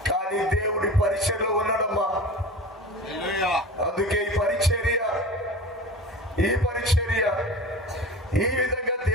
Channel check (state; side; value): normal; both; correlation 0.34